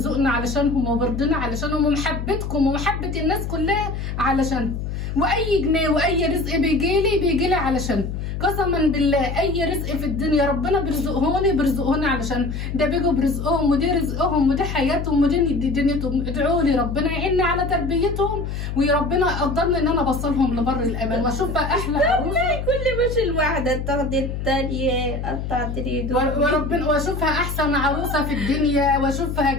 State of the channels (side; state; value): left; noise; hum, 5 dB below the sound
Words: علشانهم وبرضنا علشانهم، ومحبتكم ومحبه الناس كلها علشانهم. واي جنيه واي رزق بيجيلي علشان قسما بالله اي رزق في الدنيا ربنا بيرزقهوني علشان ده بيجوا برزقهم، ودي رزقهم ودي حياتهم ودي دنيتهم. ادعوا لي ربنا يعيني على تربيتهم، وربنا يقدرني ان انا اوصلهم لبر الامان واشوف بقى احلى عروسه. كل مش الواحده تاخدي الثانيه قطعت ايده وربنا واشوفها احسن عروسه في الدنيا، واشوفها